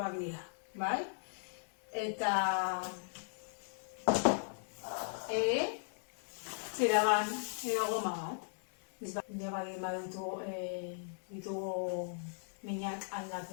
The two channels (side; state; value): right; silent; digital silence